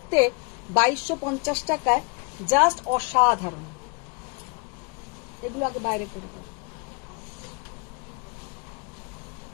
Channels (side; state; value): right; quieter; 33.6 dB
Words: 2250 টাকায় জাস্ট অসাধারণ। এগুলো আগে বাইরে করে দাও।